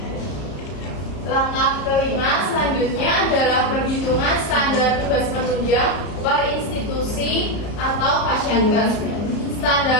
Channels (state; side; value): late; right; 33 ms